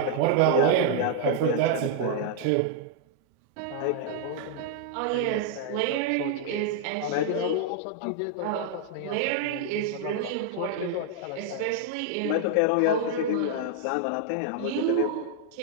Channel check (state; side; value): different; both; correlation -0.01